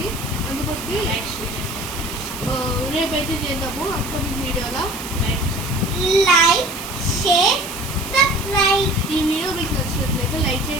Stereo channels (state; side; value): noise; right; hiss, 11 dB below the sound